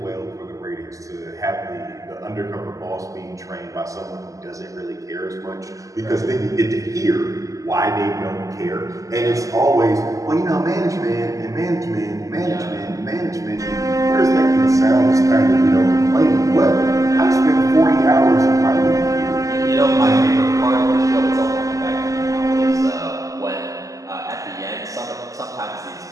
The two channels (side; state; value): left; late; 0.16 ms